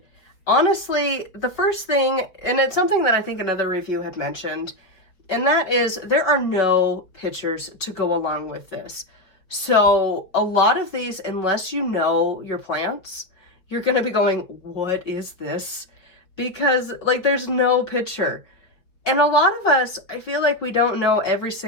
honestly, the first thing, and it's something that I think another review had mentioned, and that is there are no pictures to go along with this. So a lot of these, unless you know your plants, you're going to be going, what is this? Because like there's no picture. And a lot of us, I feel like we don't know every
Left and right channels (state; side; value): late; right; 5.0 ms